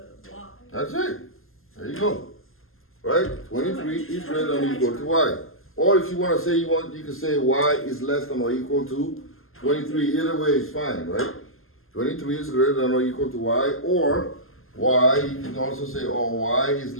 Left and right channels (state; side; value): late; right; 0.61 ms